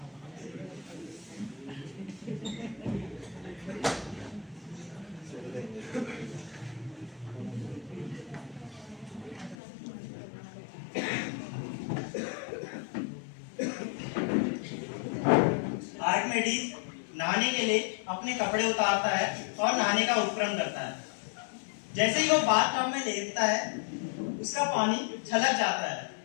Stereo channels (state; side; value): drops out; right; at 9.6 s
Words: आर्किमिडीज नहाने के लिए अपने कपड़े उतारता है और नहाने का उपक्रम करता है। जैसे ही वो बाथटब में लेटता है, उसका पानी छलक जाता है